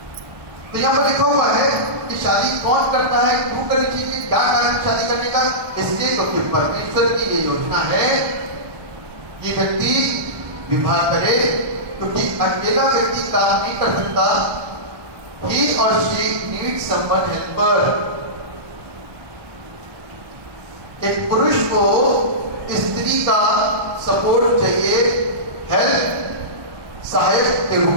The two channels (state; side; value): late; left; 1.2 ms